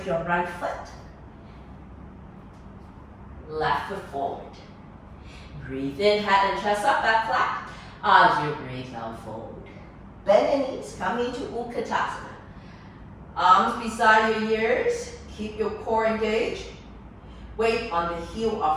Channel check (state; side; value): identical; both; correlation 1.00